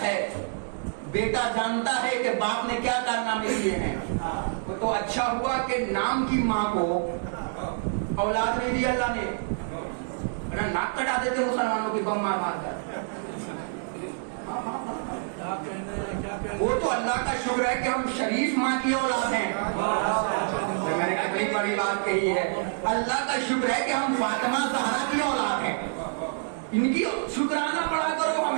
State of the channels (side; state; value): left; silent; digital silence